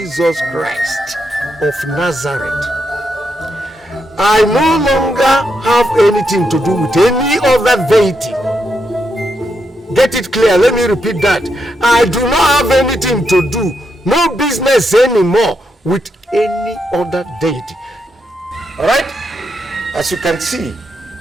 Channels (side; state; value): both; normal; correlation 0.81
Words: Christ of Nazareth. I no longer have anything to do with any other deity. Get it clear, let me repeat that. I do not have anything to do, no business anymore with any other deity. Alright? As you can see,